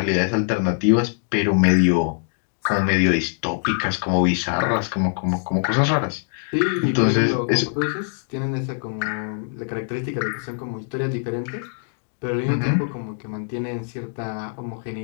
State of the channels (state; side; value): silent; right; digital silence